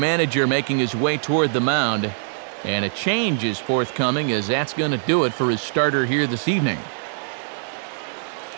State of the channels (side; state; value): left; silent; digital silence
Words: making his way toward the mound. And a change is forthcoming, as that's going to do it for his starter here this evening.